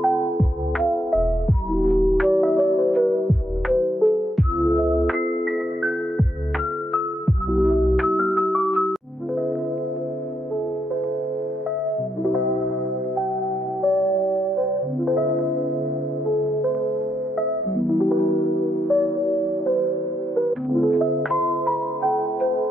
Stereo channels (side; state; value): both; normal; correlation 0.79